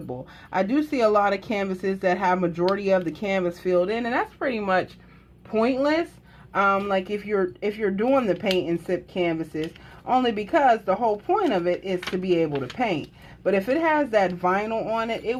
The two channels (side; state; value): both; identical; correlation 1.00